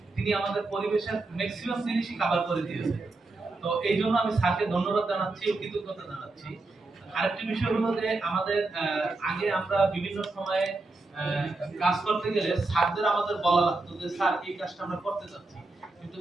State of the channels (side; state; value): left; quieter; 3.3 dB